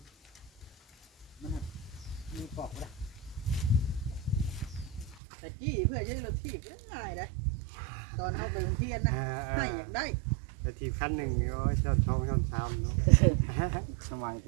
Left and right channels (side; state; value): left; drops out; at 5.2 s